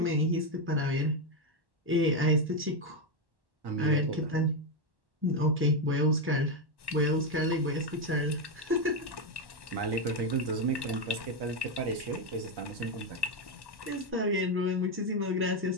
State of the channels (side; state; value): left; late; 1.1 ms